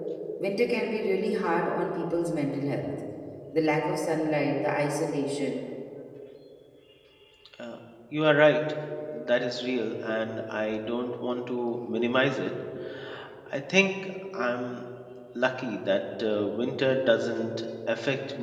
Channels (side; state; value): both; identical; correlation 1.00